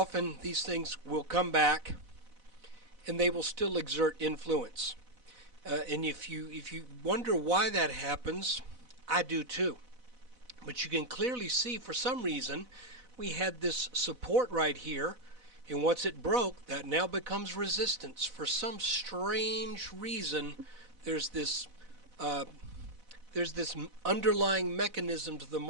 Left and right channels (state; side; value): late; left; 4.0 ms